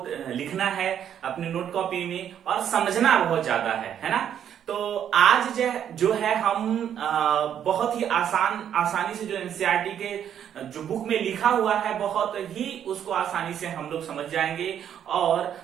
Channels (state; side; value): quieter; left; 9.4 dB